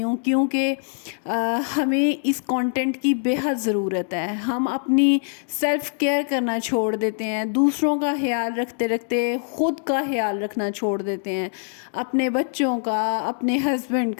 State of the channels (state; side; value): silent; right; digital silence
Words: ہوں، کیونکہ ہمیں اس کانٹینٹ کی بے حد ضرورت ہے۔ ہم اپنی سیلف کیئر کرنا چھوڑ دیتے ہیں، دوسروں کا خیال رکھتے رکھتے خود کا خیال رکھنا چھوڑ دیتے ہیں، اپنے بچوں کا، اپنے ہسبینڈ